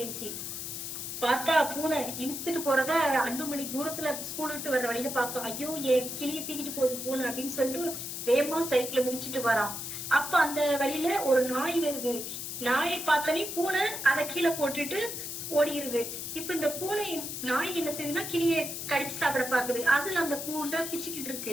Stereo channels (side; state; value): left; noise; hiss, 6 dB below the sound